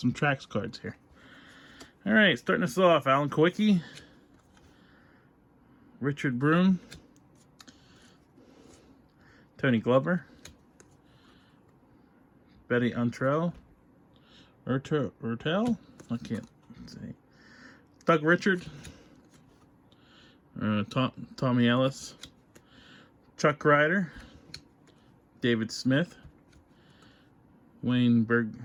tracks cards here. Alright, starting us off, Alan Kowicki, Richard Broom, Tony Glover, Betty Untrell, Urtel, I can't say, Doug Richard, Tommy Ellis, Chuck Ryder, David Smith, Wayne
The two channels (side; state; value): both; identical; correlation 1.00